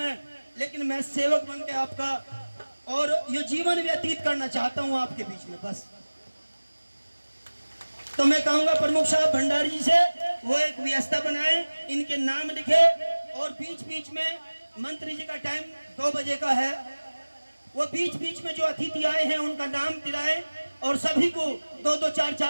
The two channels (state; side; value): inverted; both; correlation -1.00